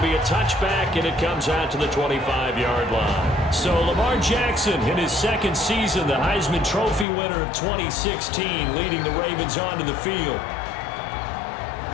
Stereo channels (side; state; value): right; drops out; at 7.1 s